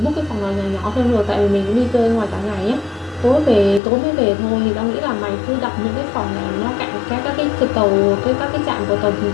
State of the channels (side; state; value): right; drops out; at 3.8 s